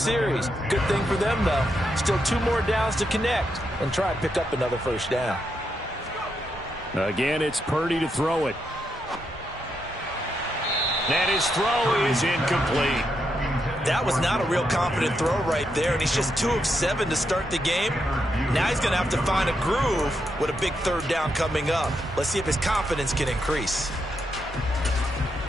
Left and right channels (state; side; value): normal; both; correlation 0.82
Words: Good thing for them, though. Still 2 more downs to connect and try and pick up another first down. Again, it's Purdy to throw it. And his throw is incomplete. That was not a real confident throw right there, and he's just 2 of 7 to start the game. Now he's going to have to find a groove with a big third down coming up. Let's see if his confidence can increase.